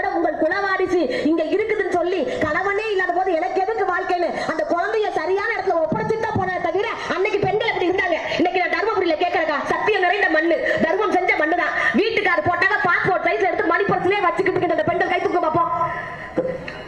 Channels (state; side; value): noise; right; rumble, 26 dB below the sound